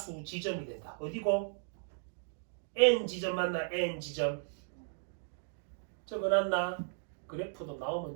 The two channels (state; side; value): silent; left; digital silence